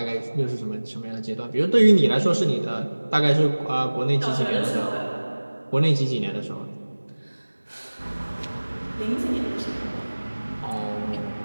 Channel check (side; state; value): both; inverted; correlation -1.00